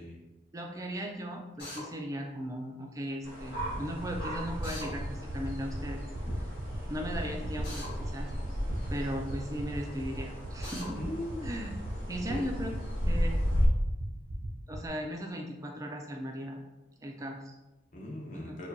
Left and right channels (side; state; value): both; normal; correlation 0.85